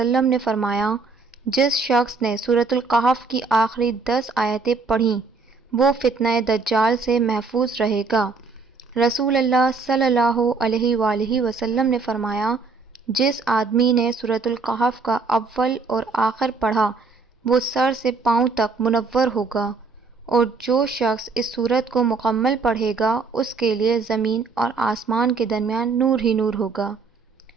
نے فرمایا، جس شخص نے سورۃ القحف کی آخری 10 آیتیں پڑھیں، وہ فتنہ دجال سے محفوظ رہے گا۔ رسول اللہ صلی اللہ علیہ وآلہ وسلم نے فرمایا، جس آدمی نے سورۃ القحف کا اول اور آخر پڑھا، وہ سر سے پاؤں تک منور ہوگا، اور جو شخص اس سورت کو مکمل پڑھے گا، اس کے لیے زمین اور آسمان کے درمیان نور ہی نور ہوگا۔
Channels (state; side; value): quieter; left; 4.4 dB